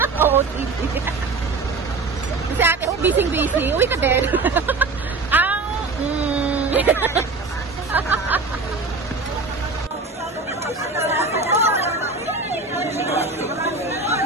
OOTD. Si Ate, busy. Uwi ka din.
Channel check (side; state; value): left; quieter; 3.8 dB